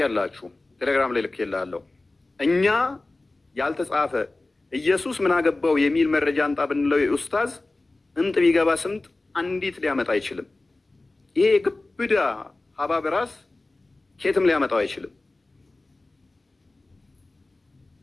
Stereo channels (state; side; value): quieter; right; 3.0 dB